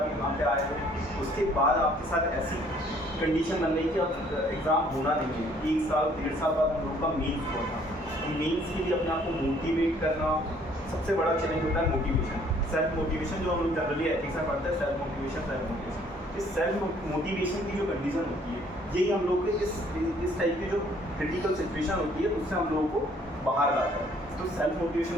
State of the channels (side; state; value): both; normal; correlation 0.61